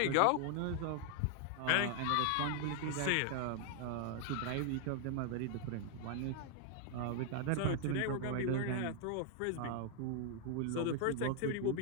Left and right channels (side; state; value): both; different; correlation 0.00